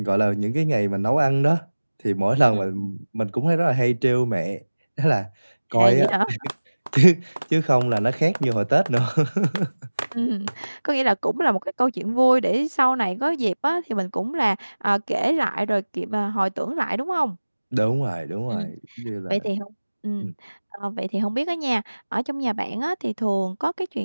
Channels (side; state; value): both; inverted; correlation -1.00